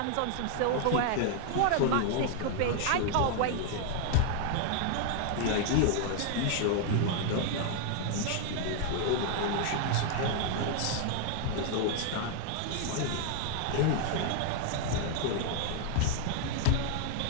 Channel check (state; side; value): different; both; correlation 0.00